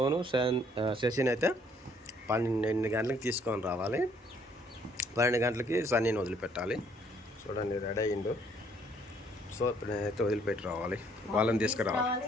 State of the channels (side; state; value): both; normal; correlation 0.64